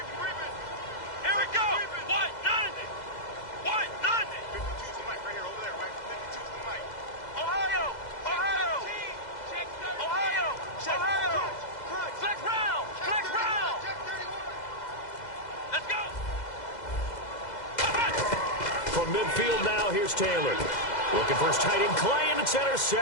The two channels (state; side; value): late; right; 2.0 ms